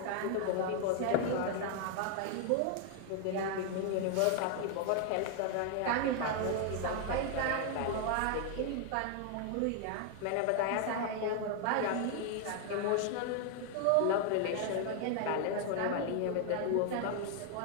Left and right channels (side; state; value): both; different; correlation 0.00